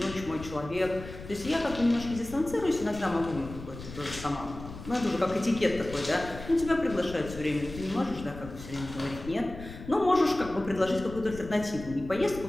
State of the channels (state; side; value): noise; left; rumble, 13 dB below the sound